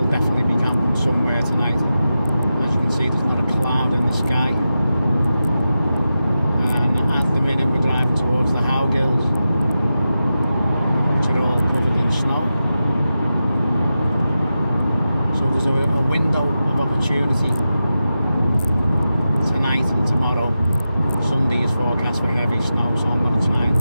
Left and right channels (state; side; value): inverted; both; correlation -0.91